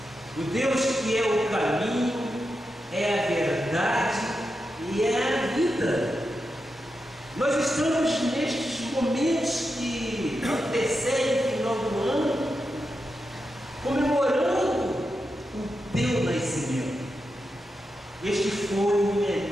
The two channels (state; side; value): normal; both; correlation 0.88